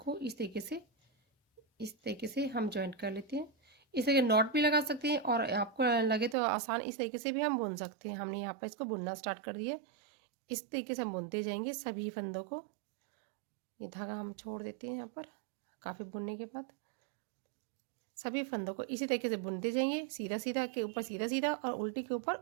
इस तरीके से हम ज्वाइंट कर लेते हैं। इस तरह नॉट भी लगा सकते हैं और आपको लगे तो आसान इस तरीके से भी हम बुन सकते हैं। हमने यहाँ पर इसको बुनना स्टार्ट कर दिया। इस तरीके से हम बुनते जाएंगे सभी फंदों को। ये धागा हम छोड़ देते हैं यहाँ पर। काफ़ी बुनने के बाद सभी फंदों को इसी तरीके से बुनते जाएंगे, सीधा सीधा के ऊपर सीधा सीधा और उल्टी के ऊपर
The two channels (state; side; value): drops out; left; at 6.4 s